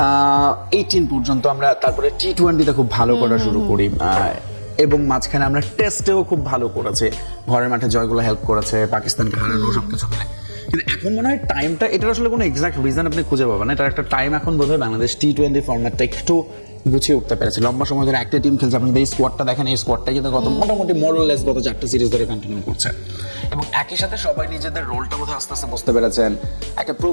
18 পর্যন্ত আমরা, তারপরে টি-20তে খুব ভালো করা শুরু করি, এবং মাঝখানে আমরা টেস্টেও খুব ভালো করেছি, ঘরের মাঠে জয়গুলো হেল্প করেছে, পাকিস্তানকে হারানো সবকিছু মিলে। কিন্তু এখন মনে হয় টাইমটা, এটার আসলে কোনো এক্সাক্ট রিজন আপনি খুঁজে পাবেন না, এটার একটা টাইম এখন বোধ হয় বাংলাদেশ টি-20 ফরম্যাটটা একটু গুছিয়ে উঠতে পেরেছে। লম্বা সময় ধরে একটা টিম খেলছে, আপনি এই স্কোয়াডটা দেখেন, এই স্কোয়াডটা কিন্তু মোটামুটি মোরলেস গত 4টা সিরিজ ধরে কন্টিনিউ করছে, এবং একই সাথে সবাই নিজেদের রোলটা বোধহয় আস্তে আস্তে বুঝতে পেরেছেন। একটা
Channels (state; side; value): inverted; both; correlation -1.00